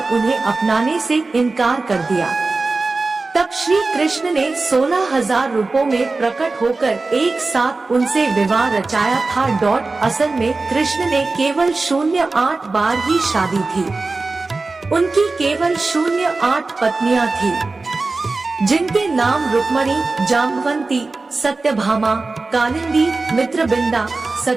उन्हें अपनाने से इनकार कर दिया। तब श्री कृष्ण ने 16,000 रूपों में प्रकट होकर एक साथ उनसे विवाह रचाया था। असल में कृष्ण ने केवल 08 बार ही शादी थी। उनकी केवल 08 पत्नियां थी, जिनके नाम रुक्मणी, जाम्बवंती, सत्यभामा, कालिंदी, मित्रबिंदा,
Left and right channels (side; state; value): left; quieter; 3.6 dB